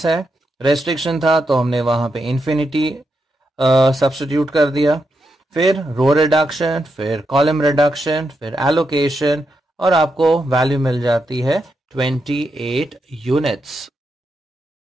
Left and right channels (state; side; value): normal; both; correlation 0.84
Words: है। रेस्ट्रिक्शन था तो हमने वहां पे इन्फिनिटी सब्स्टिट्यूट कर दिया, फिर रो रिडक्शन, फिर कॉलम रिडक्शन, फिर एलोकेशन, और आपको वैल्यू मिल जाती है 28 यूनिट्स।